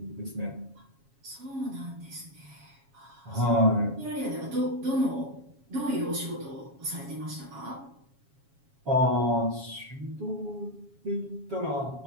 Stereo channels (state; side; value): late; left; 7.3 ms